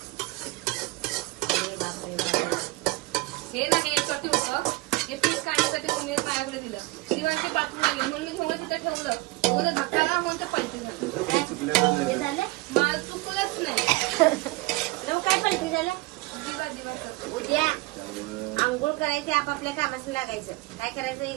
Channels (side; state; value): left; quieter; 22.0 dB